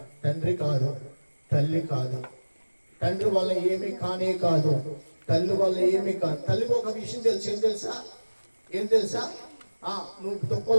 తండ్రి కాదు, తల్లి కాదు. తండ్రి వల్ల ఏమీ కానే కాదు, తల్లి వల్ల ఏమీ కాదు. తల్లికి ఒక విషయం తెలుసు. ఏం తెలుసా? నువ్వు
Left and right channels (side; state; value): both; inverted; correlation -1.00